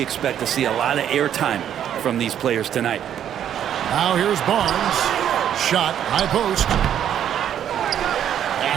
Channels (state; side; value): quieter; left; 9.9 dB